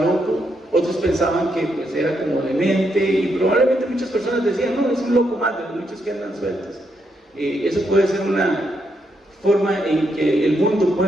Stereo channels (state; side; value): normal; both; correlation 0.79